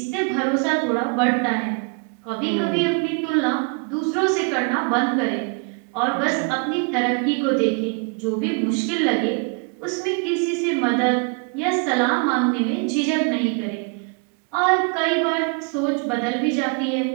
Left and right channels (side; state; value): left; quieter; 34.8 dB